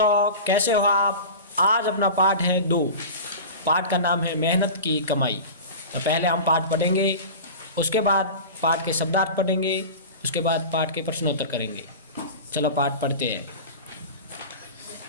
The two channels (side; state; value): both; inverted; correlation -0.32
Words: कैसे हो आप। आज अपना पाठ है 2। पाठ का नाम है मेहनत की कमाई। तो पहले हम पाठ पढ़ेंगे, उसके बाद पाठ के शब्दार्थ पढ़ेंगे, उसके बाद पाठ के प्रश्नोत्तर करेंगे। चलो पाठ पढ़ते हैं।